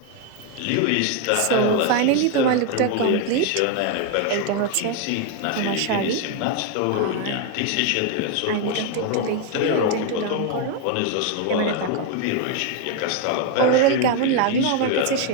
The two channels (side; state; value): both; different; correlation 0.01